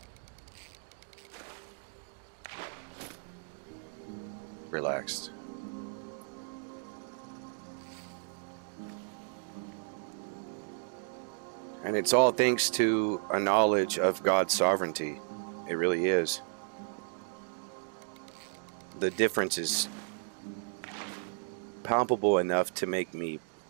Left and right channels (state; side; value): silent; left; digital silence